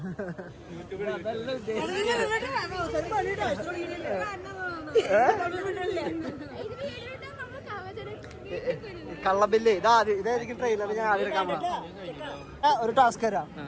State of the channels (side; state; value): both; identical; correlation 1.00